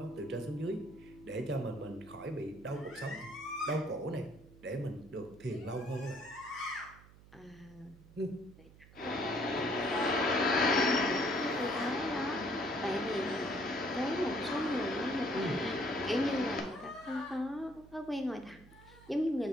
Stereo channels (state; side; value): noise; right; hum, 22 dB below the sound